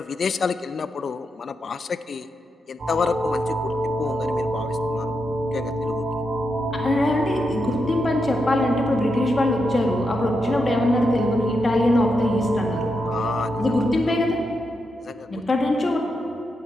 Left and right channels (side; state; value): both; normal; correlation 0.84